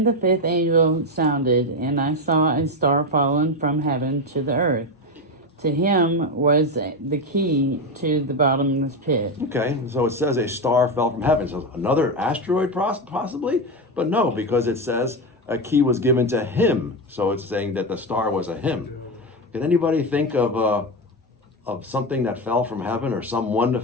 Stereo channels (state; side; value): normal; both; correlation 0.13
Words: the fifth angel sounded, and I saw a star fallen from heaven to the earth. To him was the key to the bottomless pit. Okay, so it says a star fell from heaven. So another asteroid possibly? But no, because it says a key was given to him. So it's saying that the star was a him. Can anybody think of something that fell from heaven or someone